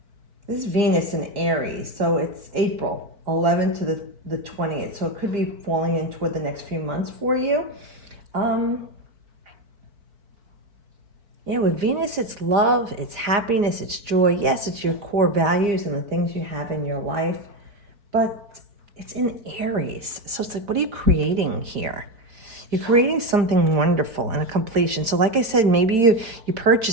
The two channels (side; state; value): left; late; 4.5 ms